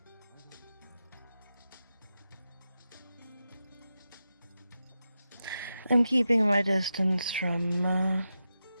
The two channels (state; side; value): inverted; both; correlation -0.90